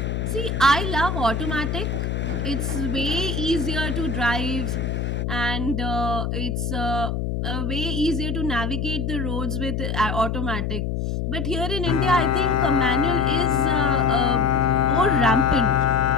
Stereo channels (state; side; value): noise; left; hum, 2 dB below the sound